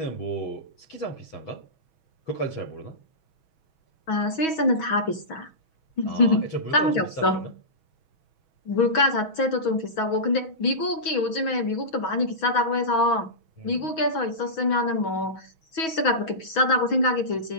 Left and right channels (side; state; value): right; late; 6.2 ms